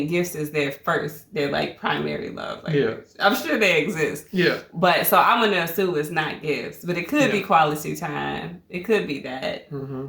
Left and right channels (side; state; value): both; identical; correlation 1.00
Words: gifts is their primary love language. Yeah. I'm sure they exist. Yeah. But so I'm gonna assume it's not gifts, but it could be quality time. It could be that.